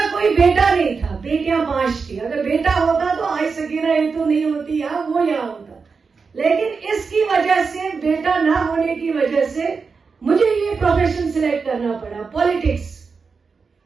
कोई बेटा नहीं था, बेटियां 5 थी। अगर बेटा होता तो आज सकीना इत्तू नहीं होती या वो यहाँ होता। लेकिन इसकी वजह से, बेटा ना होने की वजह से मुझे ये प्रोफेशन सिलेक्ट करना पड़ा, पॉलिटिक्स।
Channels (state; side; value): quieter; left; 5.0 dB